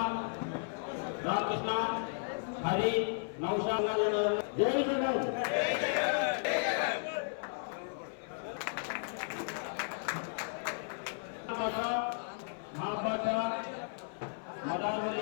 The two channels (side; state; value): right; silent; 55 dB below the other